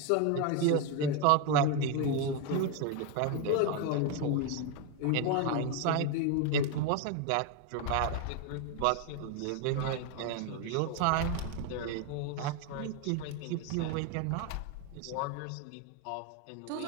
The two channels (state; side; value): different; both; correlation 0.02